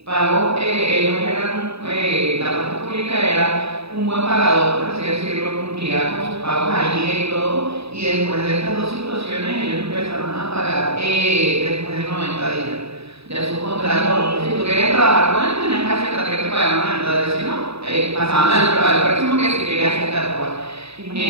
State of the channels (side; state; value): left; late; 0.78 ms